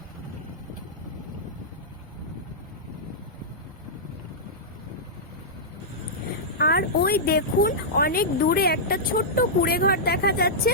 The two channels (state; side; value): normal; both; correlation -0.11